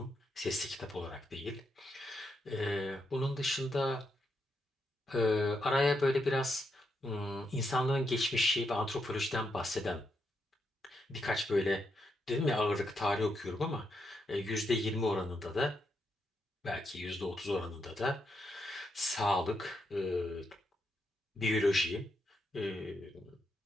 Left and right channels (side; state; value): both; normal; correlation 0.81